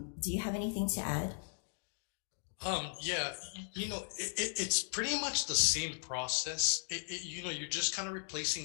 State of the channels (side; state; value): right; silent; digital silence